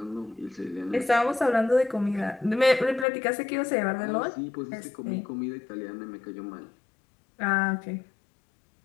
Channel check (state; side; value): drops out; right; at 3.1 s